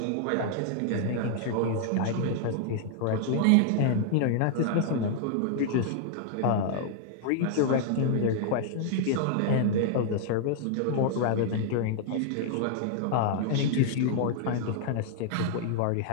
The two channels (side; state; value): both; different; correlation -0.01